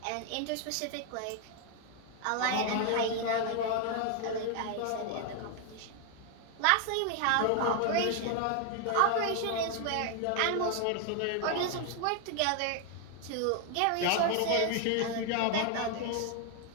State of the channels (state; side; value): different; both; correlation 0.00